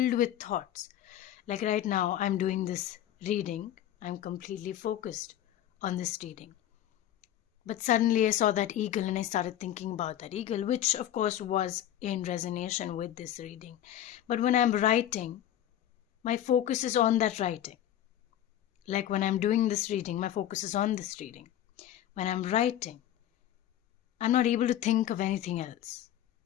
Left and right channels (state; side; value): quieter; right; 11.7 dB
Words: with thoughts. Like right now, I'm doing this reading. I'm completely focused on this reading. But suddenly I saw that eagle and I started thinking about that eagle, which of course was in resonance with this reading. But when I'm writing, my focus is on that writing. Like when I'm doing this reading, my focus is on this reading. When I'm writing, I'm not able to think of anything else